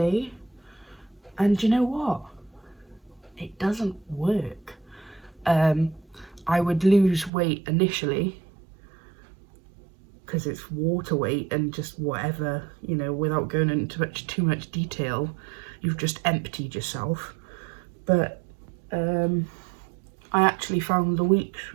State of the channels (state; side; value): drops out; left; at 7.3 s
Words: And you know what? It doesn't work. I would lose weight initially because it's water weight and just whatever, you know, without going into too much detail, you've just emptied yourself. But I actually found the weeks